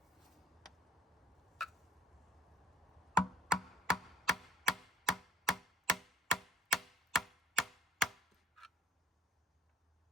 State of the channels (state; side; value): normal; both; correlation 0.51